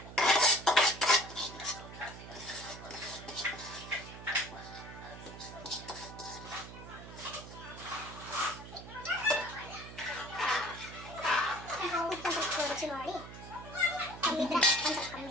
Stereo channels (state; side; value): noise; right; hum, 13 dB below the sound